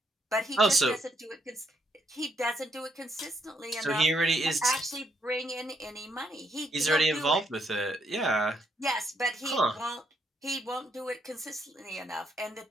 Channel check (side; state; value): both; normal; correlation 0.74